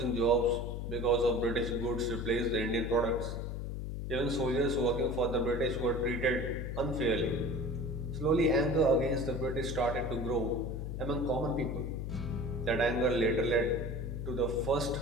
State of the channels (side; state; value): left; noise; hum, 5 dB below the sound